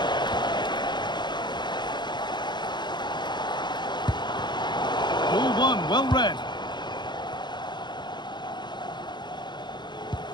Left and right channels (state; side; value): late; right; 0.21 ms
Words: Ball one, well read.